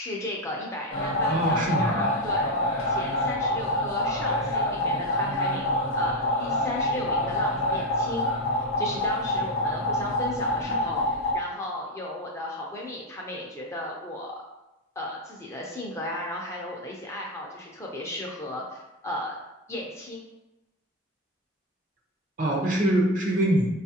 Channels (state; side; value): normal; both; correlation 0.09